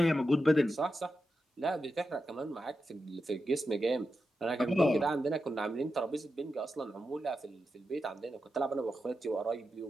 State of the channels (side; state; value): both; normal; correlation 0.89